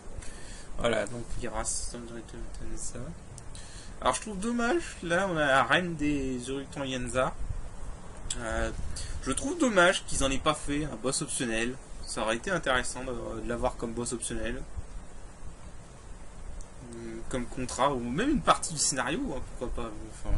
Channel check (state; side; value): identical; both; correlation 1.00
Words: Voilà, donc Viras, ça. Alors je trouve dommage, là on a la reine des Urukton-Yenza. Je trouve dommage qu'ils en aient pas fait un boss optionnel. Ça aurait été intéressant de l'avoir comme boss optionnel. Comme contrat, ou même une partie du scénario, hein, pourquoi pas. Enfin,